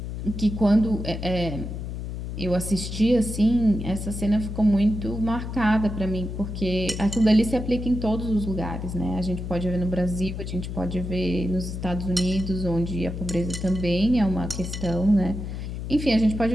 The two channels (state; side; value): noise; left; hum, 6 dB below the sound